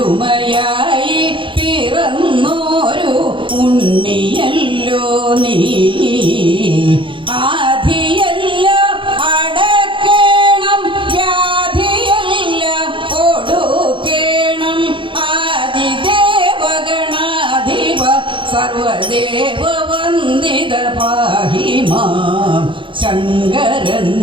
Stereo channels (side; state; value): left; late; 0.24 ms